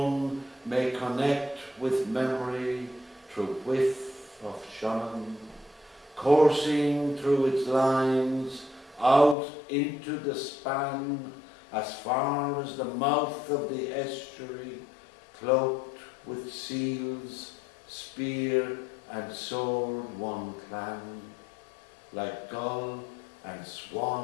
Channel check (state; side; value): drops out; right; at 9.3 s